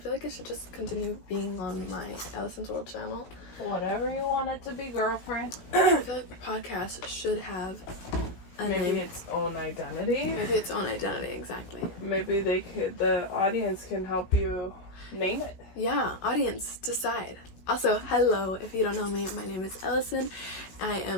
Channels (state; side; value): late; right; 16 ms